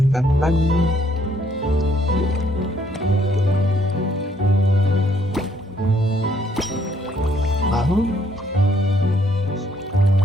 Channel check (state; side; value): normal; both; correlation 0.68